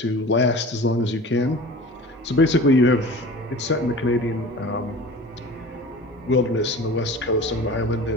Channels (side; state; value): both; normal; correlation 0.39